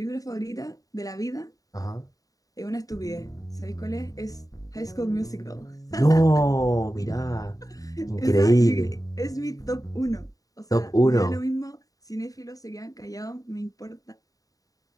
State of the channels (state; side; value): late; right; 0.17 ms